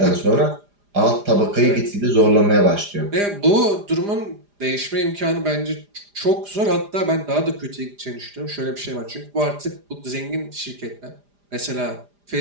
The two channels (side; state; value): left; late; 4.9 ms